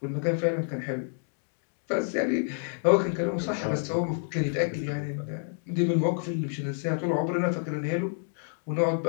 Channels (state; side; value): silent; right; 58 dB below the other